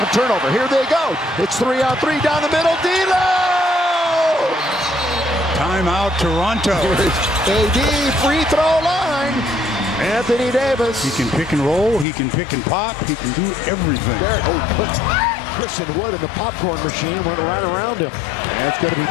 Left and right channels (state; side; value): drops out; right; at 12.1 s